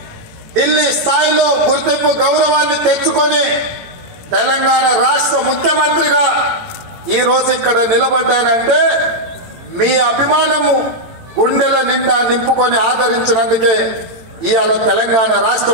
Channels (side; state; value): left; late; 18 ms